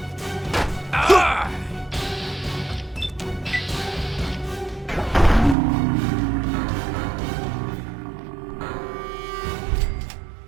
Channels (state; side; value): drops out; left; at 5.6 s